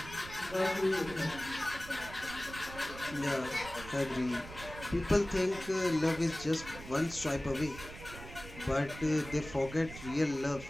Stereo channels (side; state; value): right; noise; rumble, 14 dB below the sound